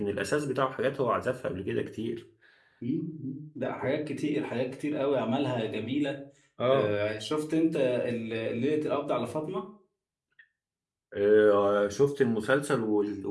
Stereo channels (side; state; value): both; identical; correlation 1.00